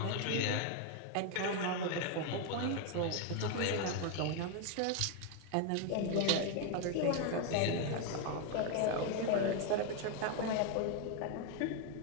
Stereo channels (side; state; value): both; different; correlation 0.01